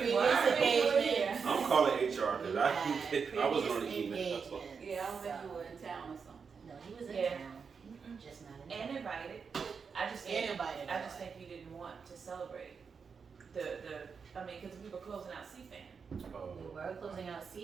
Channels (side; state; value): left; quieter; 5.8 dB